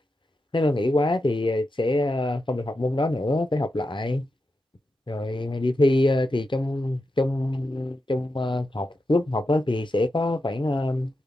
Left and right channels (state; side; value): normal; both; correlation 0.88